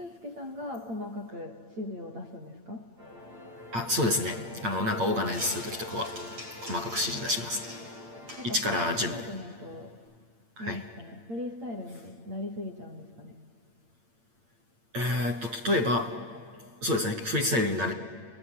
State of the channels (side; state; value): left; late; 8.7 ms